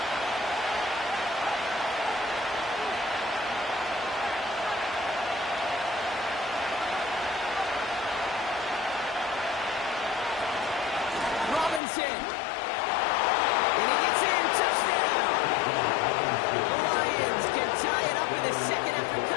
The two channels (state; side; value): drops out; right; at 11.8 s